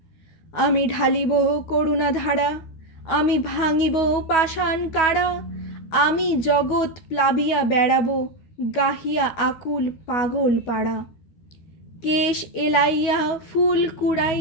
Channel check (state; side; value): late; right; 12 ms